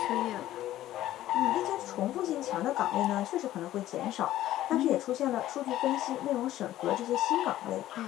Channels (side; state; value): right; quieter; 13.9 dB